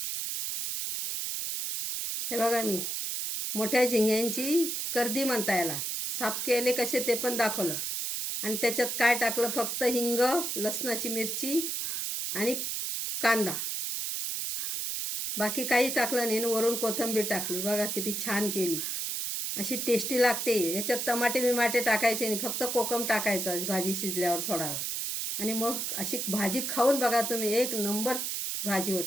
हे बघा मी मोठ्या झिंग्यांची कर्दी म्हणता याला, साफ केले कसे ते पण दाखवलं. आणि त्याच्यात काय टाकलं, फक्त हिंग, लसणाची मिरची आणि कांदा, बाकी काहीच टाकलं नाही. वरून कोथिंबीर टाकली. बघा किती छान केली, अशी टेस्टी लागते. याच्यात टमाटे बिमाटे टाकायचे नाही, फक्त कोकम टाकायचं भाजी शिजल्यावर थोडा वेळ. आणि मग अशी भाजी खाऊन बघा तुम्ही, 1 नंबर भाजी होती.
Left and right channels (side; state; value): right; noise; hiss, 2 dB below the sound